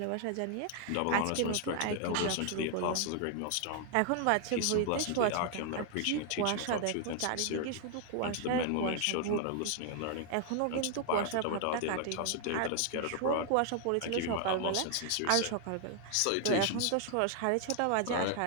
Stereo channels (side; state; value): both; different; correlation 0.00